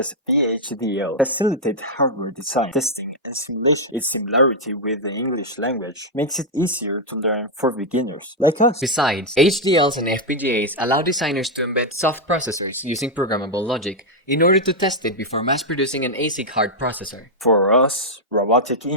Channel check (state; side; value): normal; both; correlation -0.02